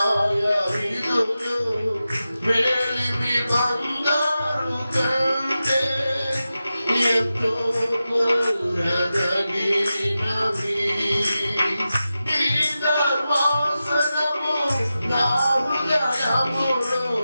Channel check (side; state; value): both; inverted; correlation -0.92